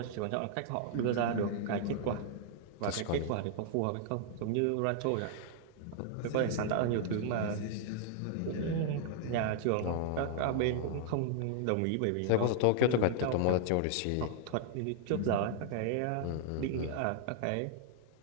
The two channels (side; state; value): both; different; correlation -0.01